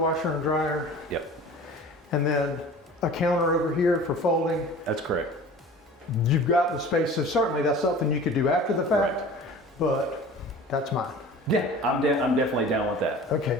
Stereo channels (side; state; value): both; normal; correlation 0.41